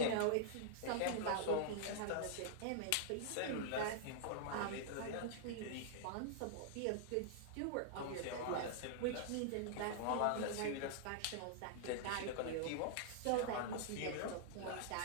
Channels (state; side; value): different; both; correlation -0.01